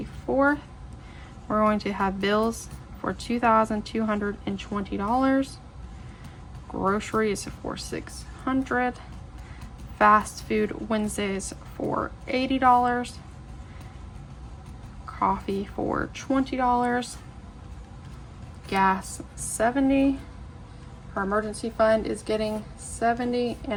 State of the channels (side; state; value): both; identical; correlation 1.00